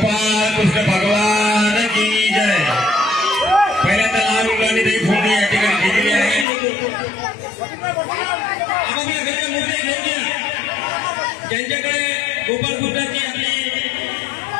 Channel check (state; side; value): drops out; right; at 6.5 s